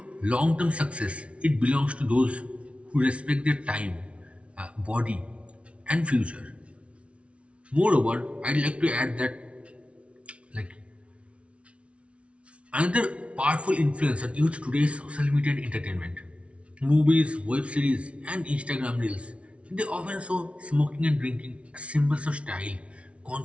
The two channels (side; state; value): left; late; 0.061 ms